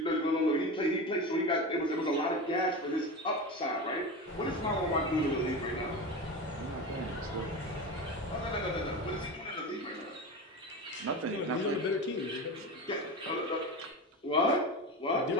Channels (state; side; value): normal; both; correlation 0.24